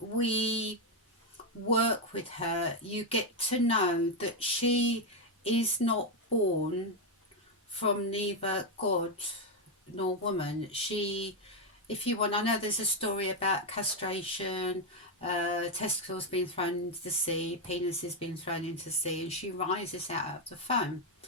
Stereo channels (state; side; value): normal; both; correlation 0.04